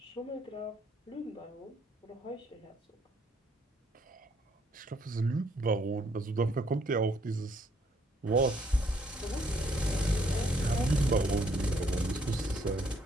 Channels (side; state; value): both; normal; correlation 0.68